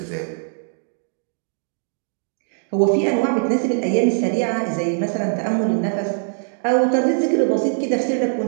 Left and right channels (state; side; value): silent; left; digital silence